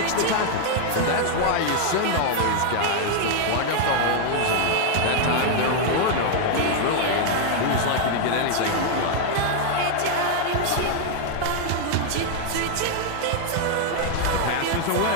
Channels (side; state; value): both; different; correlation 0.00